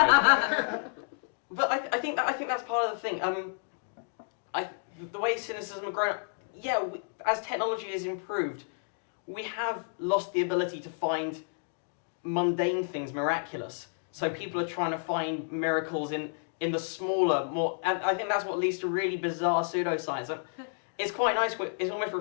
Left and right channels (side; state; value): right; silent; digital silence